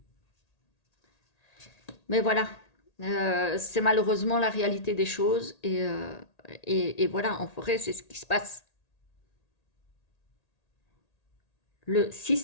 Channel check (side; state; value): right; late; 1.8 ms